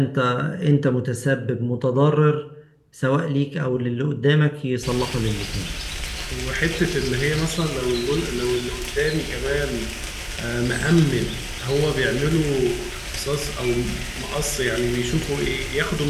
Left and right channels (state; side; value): identical; both; correlation 1.00